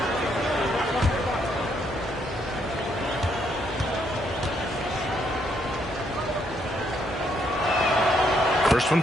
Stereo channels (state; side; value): normal; both; correlation 0.73